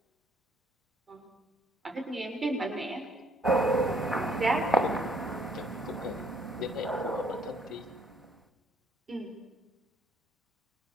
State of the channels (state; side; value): normal; both; correlation 0.64